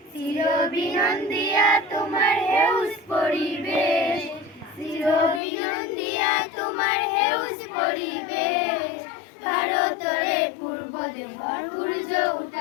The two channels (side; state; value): right; drops out; at 5.4 s